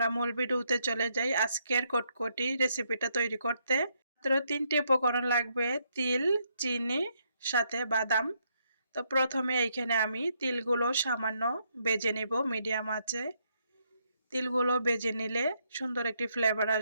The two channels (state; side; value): inverted; both; correlation -0.75